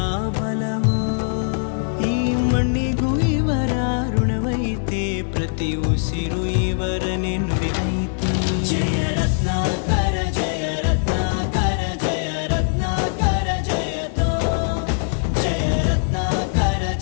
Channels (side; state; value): right; silent; digital silence